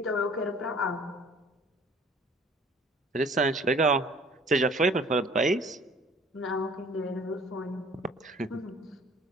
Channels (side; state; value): both; normal; correlation 0.52